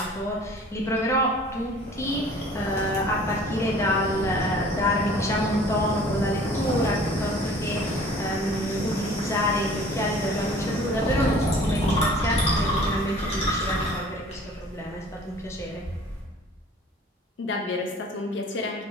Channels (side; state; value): both; normal; correlation 0.49